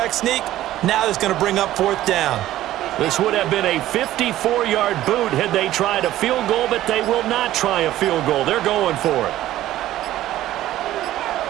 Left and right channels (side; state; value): left; quieter; 14.1 dB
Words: sneak. Now it's going to bring up 4th down. This would have been a 54-yard boot had they tried a field goal, but they will not try a field goal. They're going for it.